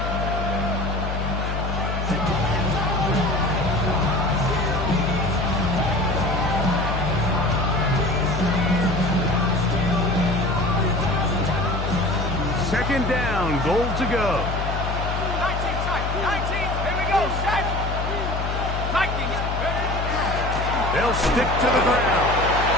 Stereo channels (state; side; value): noise; left; hum, 3 dB below the sound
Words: Second down, goal to go. 19, here we go, set. Vikings. They'll stick to the ground.